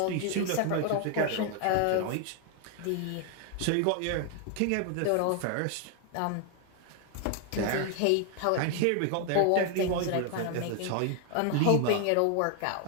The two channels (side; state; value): both; different; correlation 0.01